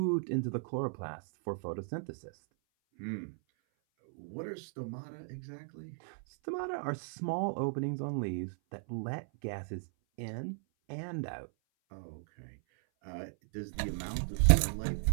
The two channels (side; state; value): left; silent; 54 dB below the other